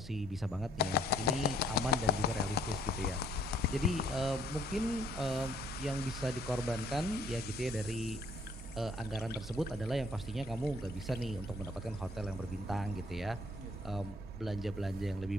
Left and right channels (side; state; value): both; normal; correlation 0.63